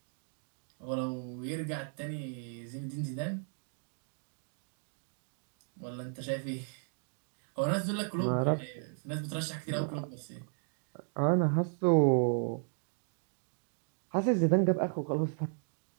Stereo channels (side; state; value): left; silent; 54 dB below the other